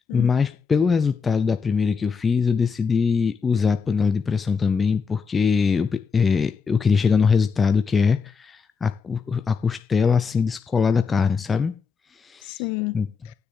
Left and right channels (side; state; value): right; quieter; 5.5 dB